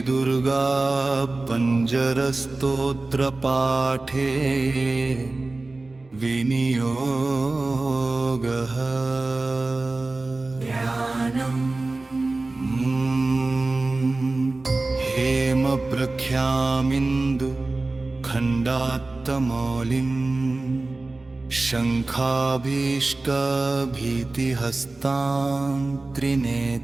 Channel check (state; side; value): quieter; left; 3.2 dB